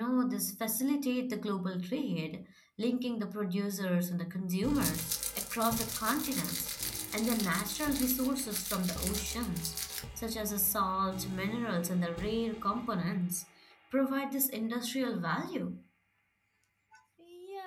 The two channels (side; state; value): both; identical; correlation 1.00